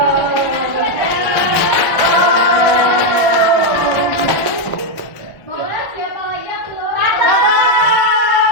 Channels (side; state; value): both; normal; correlation 0.03